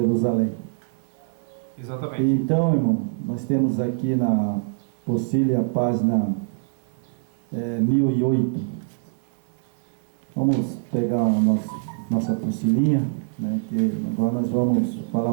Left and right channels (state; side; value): silent; left; digital silence